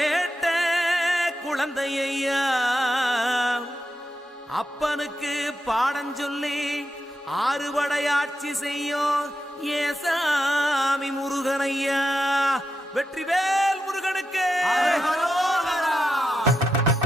குழந்தையா, அப்பனுக்கு பாடம் சொல்லி ஆறுபடையாட்சி செய்யும் ஏசாமி முருகனையா. வெற்றிவேல் முருகனுக்கு.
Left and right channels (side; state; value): both; normal; correlation 0.86